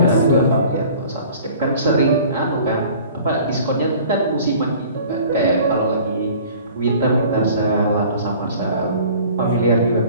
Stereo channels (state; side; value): inverted; both; correlation -0.48